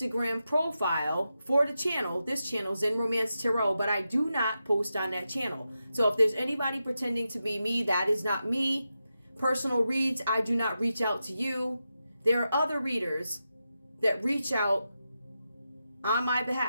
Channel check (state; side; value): inverted; both; correlation -0.89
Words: profile for the channel. This channel, Zen Romance Tarot, but I do not post on that channel. So if there's anybody pretending to be me, that is not me. Personal reads, I do not reach out to you. There are other readers that reach out on my